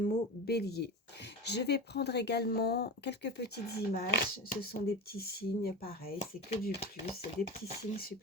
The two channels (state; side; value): normal; both; correlation 0.26